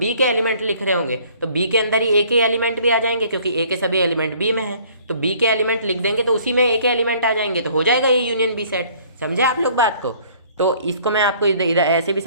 के एलिमेंट लिख रहे होंगे तो बी के अंदर ही ए के एलिमेंट भी आ जाएंगे, क्योंकि ए के सभी एलिमेंट बी में है। तो बी के एलिमेंट लिख देंगे तो उसी में ए के एलिमेंट आ जाएंगे, तो हो जाएगा ए यूनियन बी सेट। समझे आप लोग बात को? तो इसको मैं आपको इधर ऐसे भी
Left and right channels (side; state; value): both; inverted; correlation -0.56